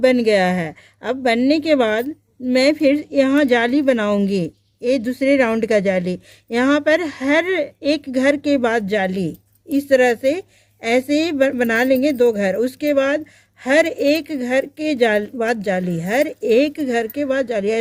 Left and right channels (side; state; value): both; identical; correlation 1.00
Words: गया है। अब बनने के बाद मैं फिर यहाँ जाली बनाऊंगी, ये दूसरे राउंड का जाली। यहाँ पर हर एक घर के बाद जाली, इस तरह से ऐसे बना लेंगे 2 घर। उसके बाद हर एक घर के बाद जाली, हर एक घर के बाद जाली,